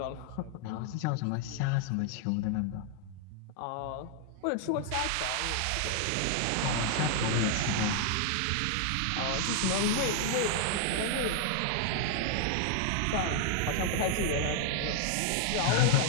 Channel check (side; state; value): both; different; correlation 0.00